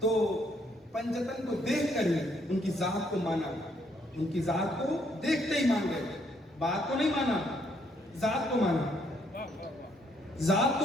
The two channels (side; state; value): both; normal; correlation 0.70